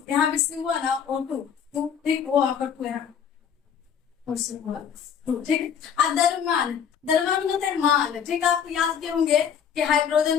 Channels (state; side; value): quieter; right; 7.8 dB